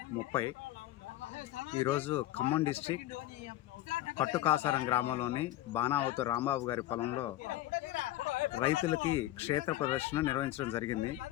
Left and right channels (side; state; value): right; quieter; 14.9 dB